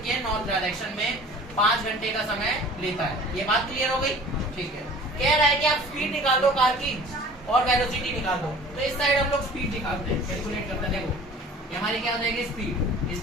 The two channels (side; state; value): both; normal; correlation 0.46